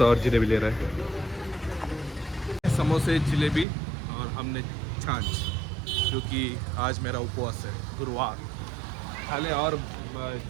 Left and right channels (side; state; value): left; drops out; at 3.7 s